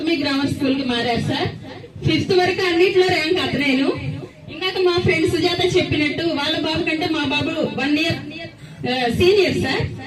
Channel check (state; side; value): identical; both; correlation 1.00